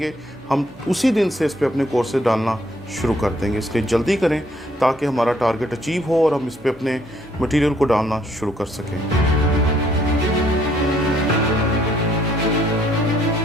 ہم اسی دن سے اس پہ اپنے کورسز ڈالنا شروع کر دیں گے، اس لیے جلدی کریں تاکہ ہمارا ٹارگٹ اچیو ہو اور ہم اس پہ اپنے مٹیریل کو ڈالنا شروع کر سکیں۔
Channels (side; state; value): both; normal; correlation 0.66